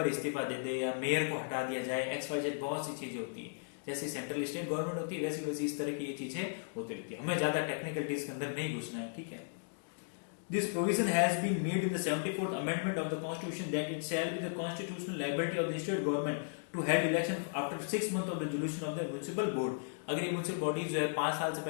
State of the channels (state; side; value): silent; right; digital silence